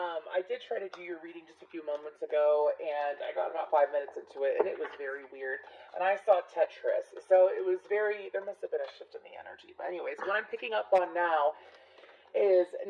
did try to do your reading just a few moments ago, and I got about 5 minutes into it, and it was very weird. And I saw Tetris, so it was very. There must have been a shift in the energy. But anyways, what I'm picking up on now is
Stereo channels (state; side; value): identical; both; correlation 1.00